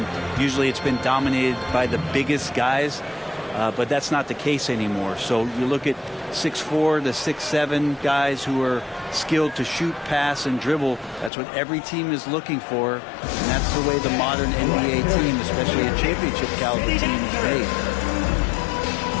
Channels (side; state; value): right; drops out; at 11.3 s